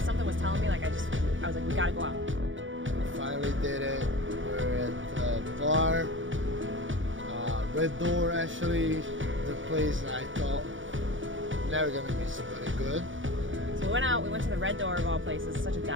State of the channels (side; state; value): left; late; 0.56 ms